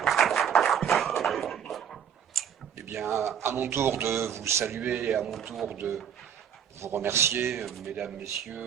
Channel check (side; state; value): left; quieter; 8.6 dB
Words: Eh bien, à mon tour de vous saluer, à mon tour de vous remercier, mesdames,